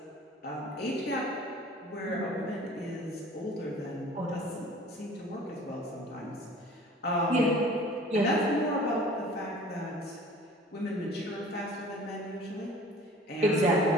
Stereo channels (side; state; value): both; normal; correlation 0.46